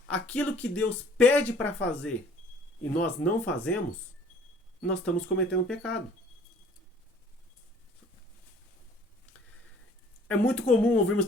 Aquilo que Deus pede para fazer e nós não fazemos, nós estamos cometendo pecado. É muito comum ouvirmos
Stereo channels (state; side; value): normal; both; correlation 0.54